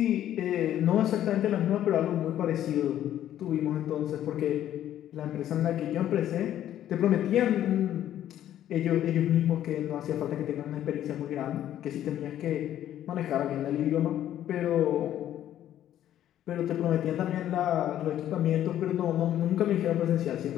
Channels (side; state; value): right; quieter; 11.7 dB